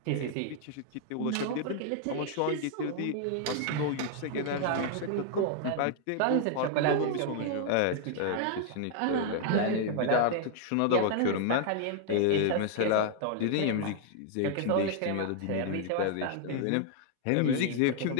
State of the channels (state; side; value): different; both; correlation 0.00